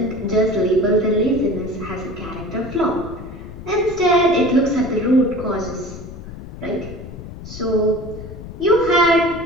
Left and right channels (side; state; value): left; noise; rumble, 12 dB below the sound